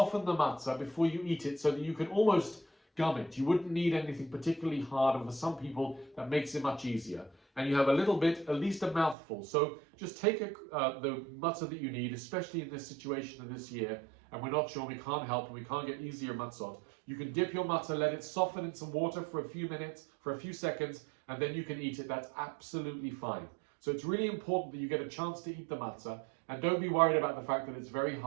the matzah before you eat it so that you can almost gum it. You wouldn't need anything particularly hard, and for some people that makes it much easier. and you have a little bit, at least a mouthful. So just take the matzah that you need, especially in this situation of this year, and we're not sure, we can't help, and we can't get easier matzot. You can dip your matzah, let it soften in some water for a few minutes, for a few seconds, and then you can eat it. That's absolutely fine. So it's really important that you get a chance to eat the matzah, and don't be worried about the fact that it's very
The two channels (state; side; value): drops out; left; at 9.2 s